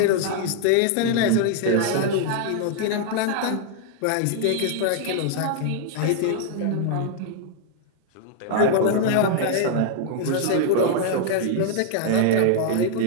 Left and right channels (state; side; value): different; both; correlation -0.01